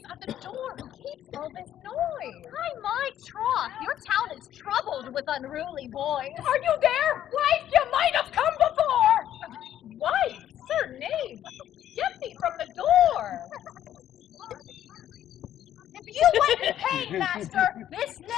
at the door who keeps all this noise? By my troth, your town is troubled with unruly boys. Are you there? Wife, you might have come before! Wife, sir knave, get thee from the door! If you went in pain, master, this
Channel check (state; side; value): quieter; right; 11.3 dB